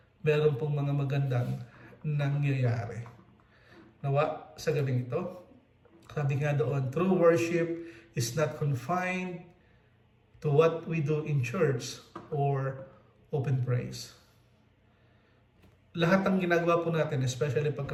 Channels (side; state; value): both; identical; correlation 1.00